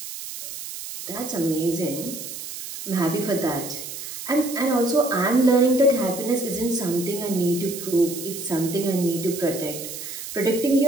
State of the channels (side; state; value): right; noise; hiss, 9 dB below the sound